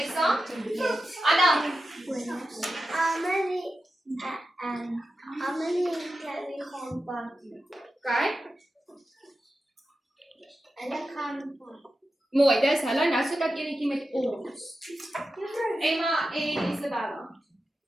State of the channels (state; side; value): normal; both; correlation 0.91